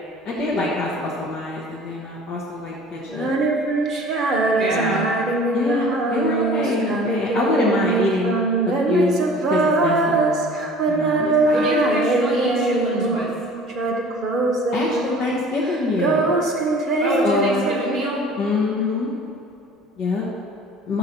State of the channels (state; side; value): normal; both; correlation 0.46